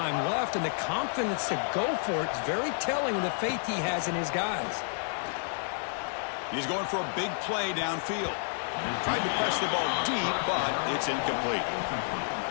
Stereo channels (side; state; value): right; silent; digital silence